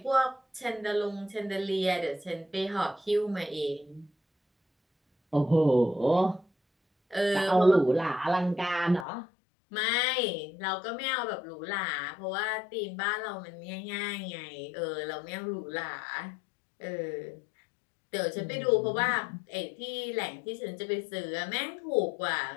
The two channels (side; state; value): right; drops out; at 9.1 s